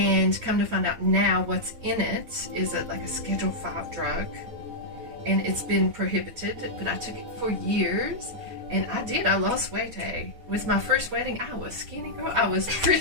come to find out now, what's in it is like a Schedule 5 drug, and it's been prohibited. But I took it for years, and I lost weight. With my first wedding, I was skinny, girl. I was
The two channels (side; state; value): left; late; 9.3 ms